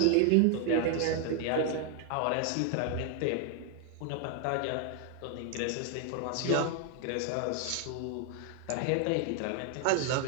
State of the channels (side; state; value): both; different; correlation 0.00